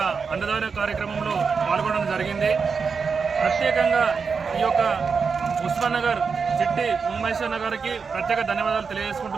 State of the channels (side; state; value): left; quieter; 5.4 dB